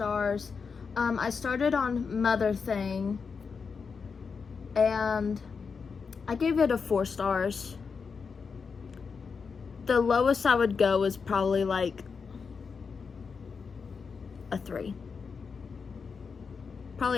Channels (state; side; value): quieter; right; 5.5 dB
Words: I started on Mother Thing, and I gave it a 4 stars. The lowest I would go is probably like a 3.